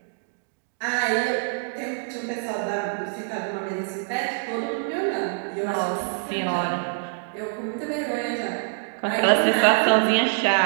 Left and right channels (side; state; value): left; silent; digital silence